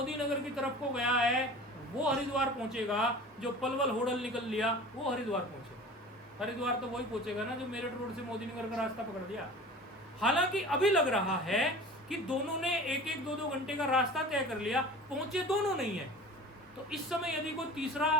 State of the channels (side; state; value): both; normal; correlation 0.40